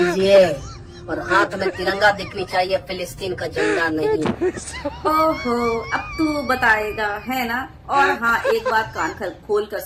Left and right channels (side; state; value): both; identical; correlation 1.00